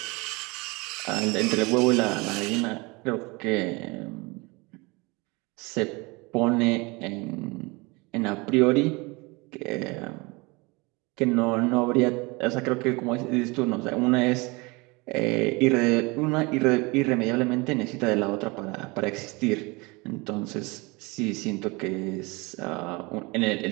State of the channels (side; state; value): left; quieter; 26.0 dB